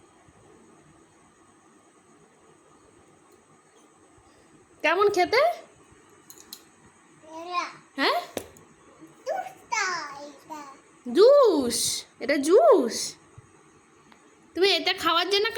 কেমন খেতে? হ্যাঁ, জুস। এটা জুস। তুমি এটা খাওয়ার জন্য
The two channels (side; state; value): both; identical; correlation 1.00